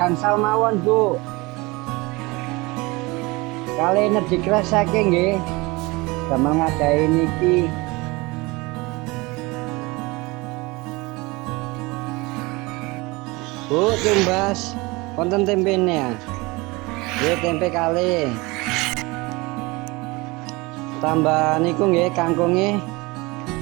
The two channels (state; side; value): quieter; left; 23.9 dB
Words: mawon Bu. Kali energi kresake nggih. Damel ngadahi niki. Bu, tumbas wonten tempene ya. Nggih tempe kali. Tambah niku nggih kangkunge.